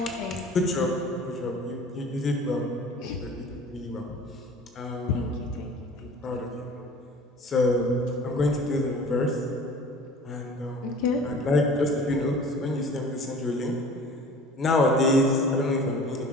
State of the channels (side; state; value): both; normal; correlation 0.44